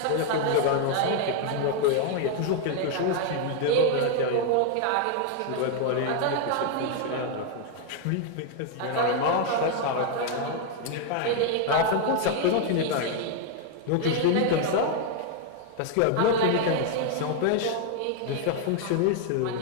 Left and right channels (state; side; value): different; both; correlation 0.00